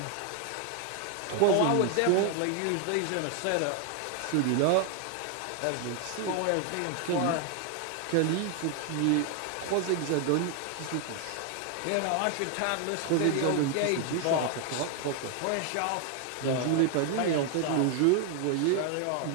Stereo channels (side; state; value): both; different; correlation 0.00